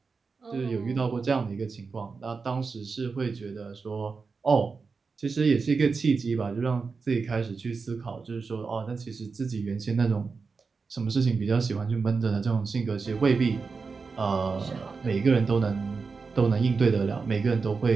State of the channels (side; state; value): left; quieter; 4.7 dB